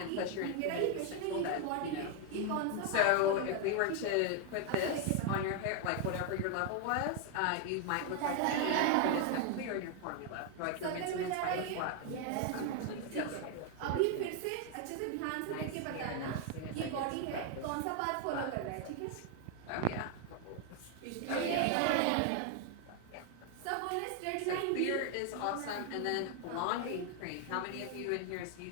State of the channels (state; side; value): different; both; correlation 0.01